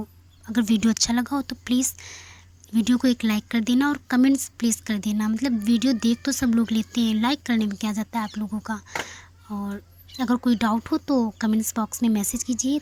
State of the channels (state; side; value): identical; both; correlation 1.00